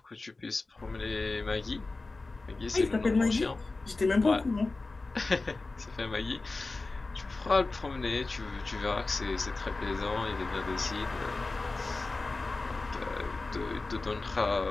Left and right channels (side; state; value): right; quieter; 3.5 dB